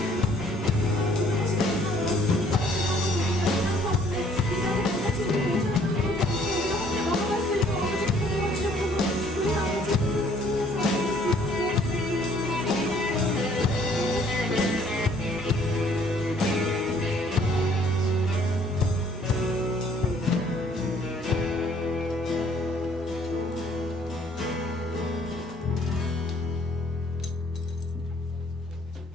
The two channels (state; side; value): normal; both; correlation 0.60